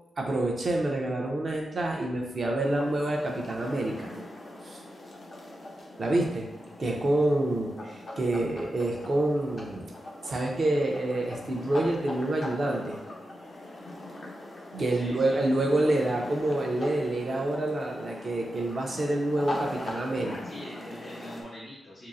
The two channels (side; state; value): both; normal; correlation 0.90